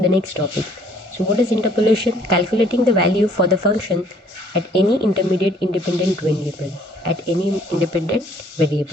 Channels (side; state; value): both; normal; correlation 0.60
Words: next topic. So what is interpolation? Calculating the value for the function at any intermediate independent variable. At any independent